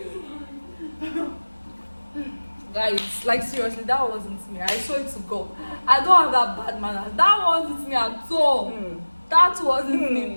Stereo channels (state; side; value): inverted; both; correlation -1.00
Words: Guys, like seriously, that wasn't me. I saw it to go. I don't have that bad manners. That wasn't me at all. That wasn't me,